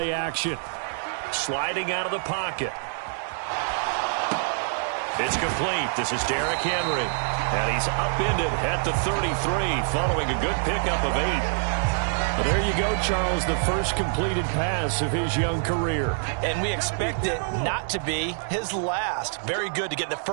action. Sliding out of the pocket. It's complete. This is Derrick Henry. And he's upended at the 33 following a good pickup of 8. Well, there you go, Charles, the first completed pass of his young career. And we expect it not to be his last. Very good to get the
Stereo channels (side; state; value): left; silent; 61 dB below the other